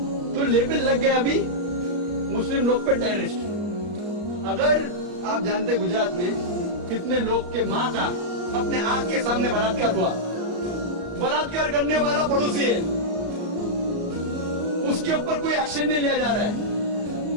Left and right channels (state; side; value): late; left; 34 ms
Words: तो लेबल लग गया अभी मुस्लिम लोग पे टेररिस्ट। अगर आप जानते गुजरात में कितने लोग के माँ का अपने आंख के सामने बलात्कार हुआ, बलात्कार करने वाला पड़ोसी है, उसके ऊपर कोई एक्शन नहीं लिया जा रहा है,